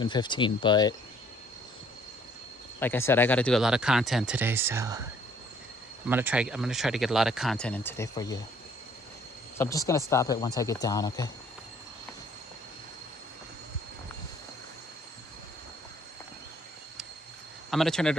15, but like I said, I got to do a lot of content today, so I'm gonna try to get a lot of content in today for you. So I'm just gonna stop it once I get down, okay? I'm gonna turn it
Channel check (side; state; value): both; normal; correlation 0.61